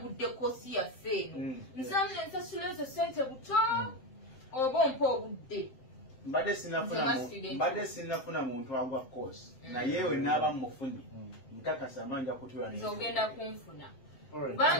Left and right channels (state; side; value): late; right; 7.7 ms